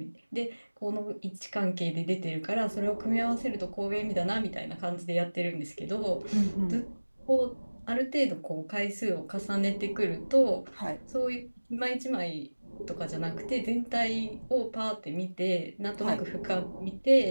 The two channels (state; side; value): inverted; both; correlation -1.00